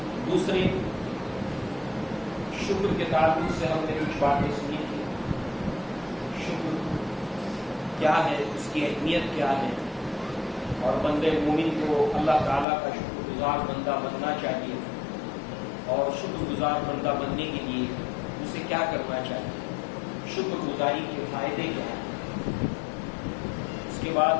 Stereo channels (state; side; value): drops out; right; at 12.7 s